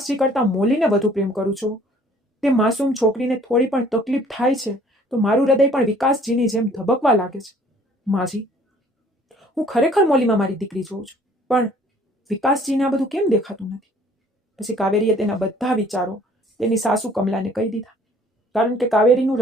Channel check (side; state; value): both; normal; correlation 0.56